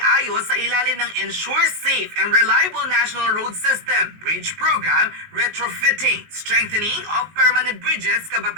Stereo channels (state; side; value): late; left; 19 ms